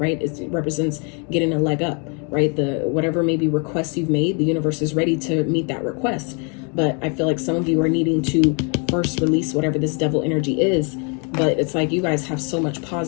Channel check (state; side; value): quieter; right; 36.3 dB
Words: It represents getting a leg up, right? Whatever maybe requests you've made, the universe is ready to meet that request. But I feel like some of you are needing to first release whatever this devil energy is. But it's like you guys have so much